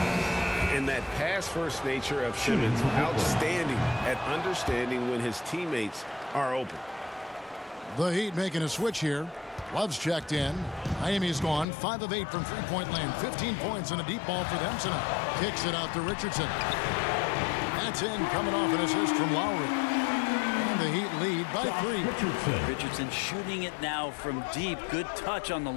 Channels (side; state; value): right; drops out; at 11.7 s